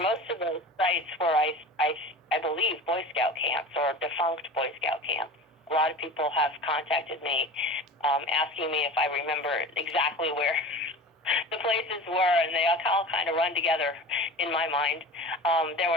most of those sites were, I believe, Boy Scout camps or defunct Boy Scout camps. A lot of people have contacted me asking me if I remember exactly where the places were, and they all kind of run together in my mind. There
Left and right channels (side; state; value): both; normal; correlation 0.35